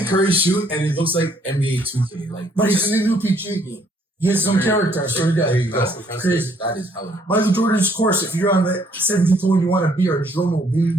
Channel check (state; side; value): normal; both; correlation 0.66